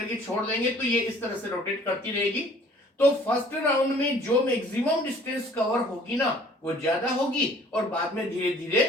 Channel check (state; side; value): normal; both; correlation 0.54